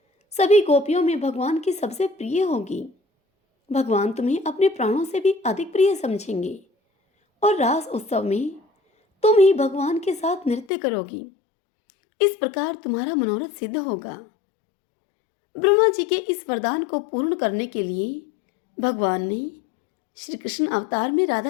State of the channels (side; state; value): right; drops out; at 10.7 s